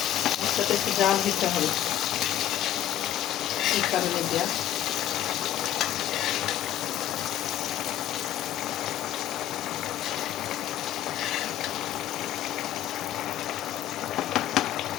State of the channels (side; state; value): right; quieter; 11.9 dB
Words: মাছটাতে একটু জাল দিতে হবে, এই কারণে দেওয়া।